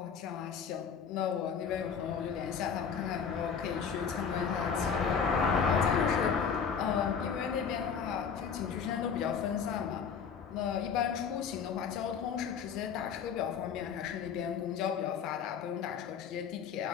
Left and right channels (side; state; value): right; quieter; 6.7 dB